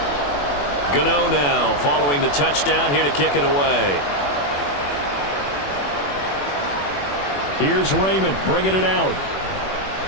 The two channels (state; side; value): late; right; 21 ms